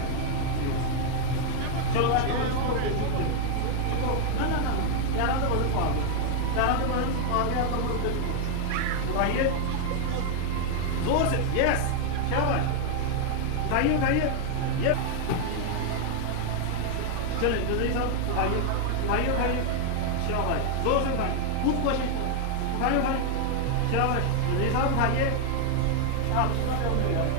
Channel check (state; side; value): different; both; correlation 0.00